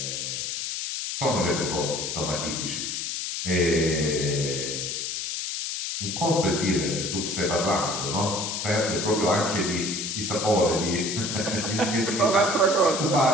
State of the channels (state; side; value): noise; left; hiss, 3 dB below the sound